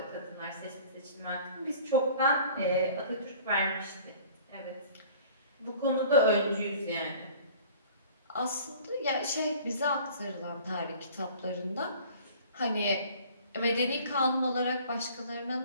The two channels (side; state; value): both; inverted; correlation -0.48